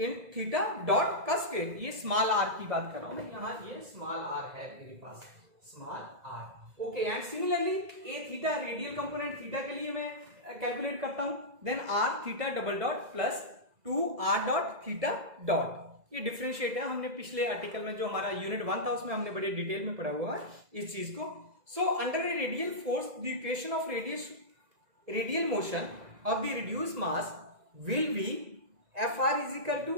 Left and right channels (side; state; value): left; late; 2.0 ms